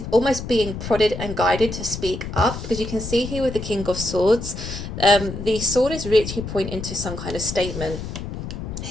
almost being prodded and guided to speak up, because you can see here with the King of Swords, the sword is literally pointing to some kind of statement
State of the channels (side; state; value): left; noise; rumble, 7 dB below the sound